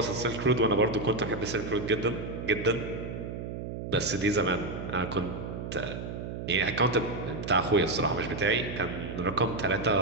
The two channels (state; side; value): noise; right; hum, 7 dB below the sound